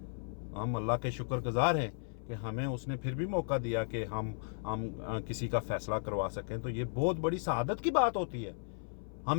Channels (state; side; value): silent; right; 54 dB below the other